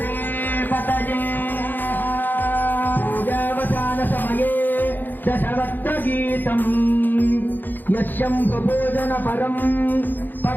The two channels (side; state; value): right; late; 0.089 ms